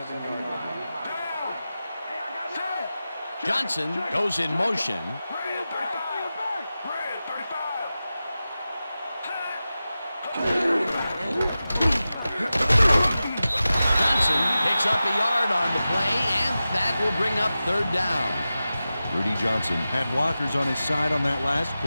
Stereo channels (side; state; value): both; inverted; correlation -0.94